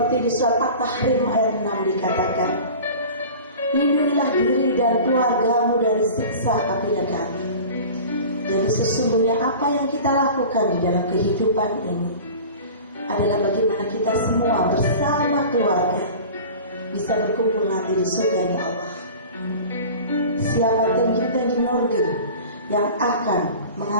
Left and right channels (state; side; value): inverted; both; correlation -0.38